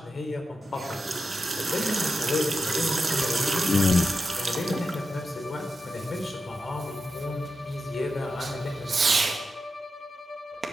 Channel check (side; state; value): both; normal; correlation 0.88